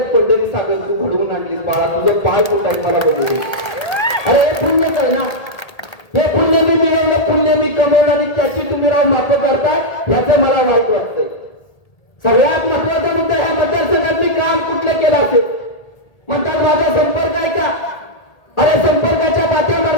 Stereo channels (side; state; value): right; late; 1.8 ms